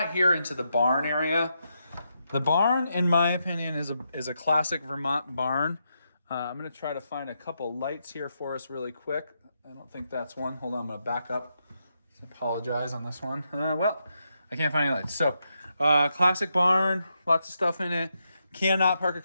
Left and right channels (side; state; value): both; inverted; correlation -0.83